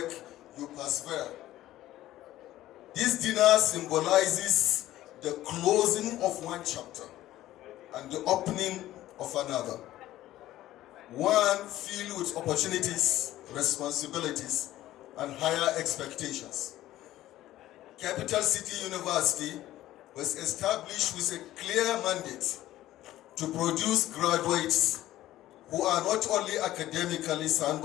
you persevere. This dinner symbolizes the closing of one chapter and the opening of another. One filled with opportunities, responsibilities, and higher expectations. Capital City University was established with a clear mandate to produce graduates who are not only academically sound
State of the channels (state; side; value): quieter; right; 14.7 dB